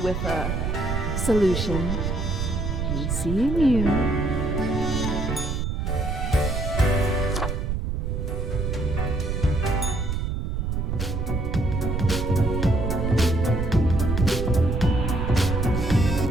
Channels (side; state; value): right; noise; rumble, 1 dB below the sound